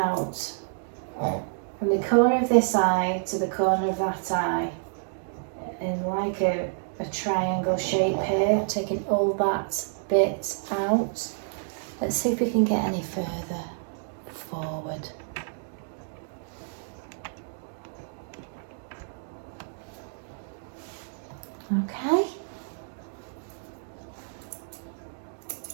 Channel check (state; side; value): silent; left; digital silence